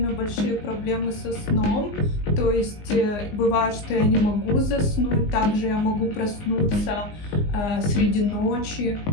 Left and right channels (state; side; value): late; right; 20 ms